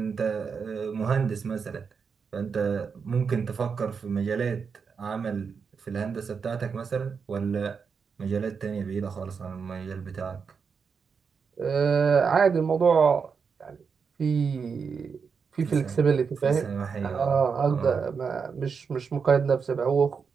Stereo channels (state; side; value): quieter; left; 5.8 dB